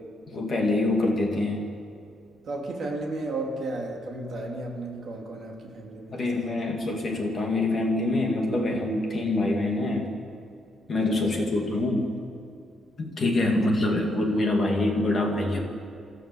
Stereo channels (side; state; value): both; normal; correlation 0.76